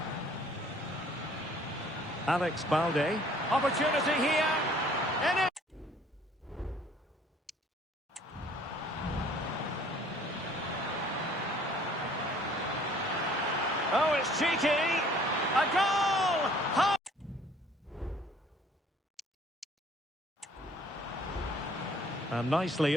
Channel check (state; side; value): normal; both; correlation 0.56